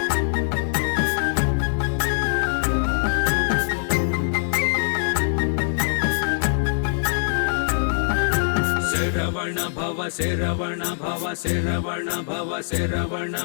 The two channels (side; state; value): right; silent; digital silence